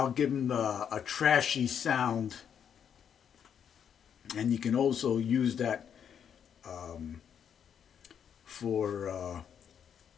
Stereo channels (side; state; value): right; quieter; 8.2 dB